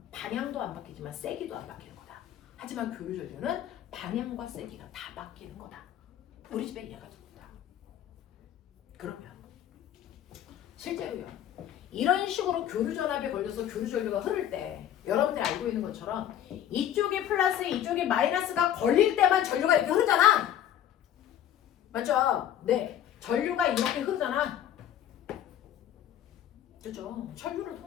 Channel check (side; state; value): right; quieter; 10.7 dB